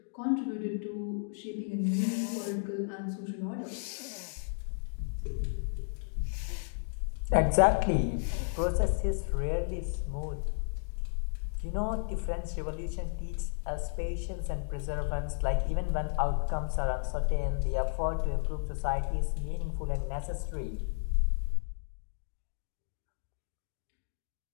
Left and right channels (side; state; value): right; silent; digital silence